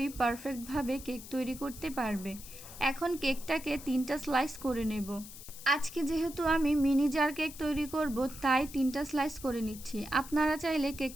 পারফেক্টভাবে কেক তৈরি করতে পারবে। এখন কেকটাকে 3টা স্লাইস করে নেব। আজকে যেহেতু আমি মিনি জার কেক তৈরি করব তাই 3টা স্লাইস করে নিচ্ছি। আপনারা চাইলে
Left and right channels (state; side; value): noise; left; hiss, 15 dB below the sound